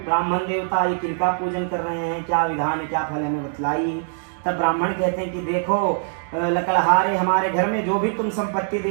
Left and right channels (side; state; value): left; silent; digital silence